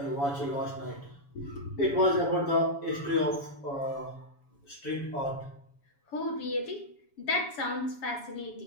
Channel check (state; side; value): late; right; 7.1 ms